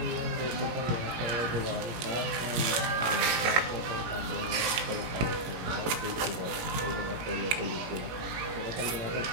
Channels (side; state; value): left; late; 17 ms